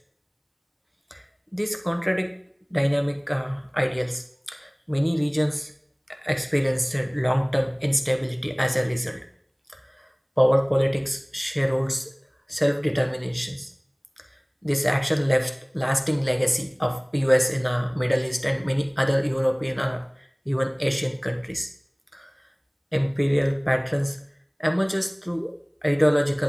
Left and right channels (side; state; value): both; identical; correlation 1.00